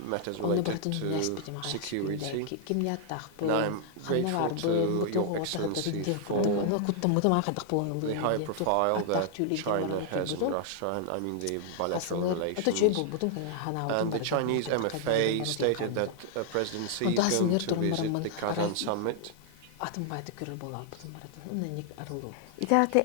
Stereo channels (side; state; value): both; different; correlation 0.00